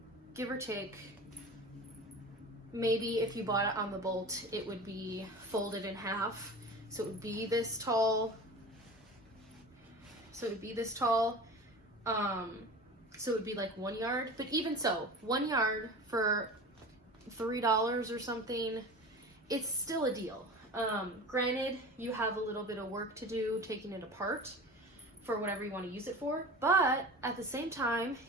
give or take. Maybe if you bought it on the bolt, it would be folded in half. So it would be this tall. So it would be like 1 yard. But even so, 1 yard for $3 or something, it's still a deal. Granted, you have a little bit of work to do taking it apart for whatever you want to use it for, but at the same time,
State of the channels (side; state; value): both; normal; correlation 0.35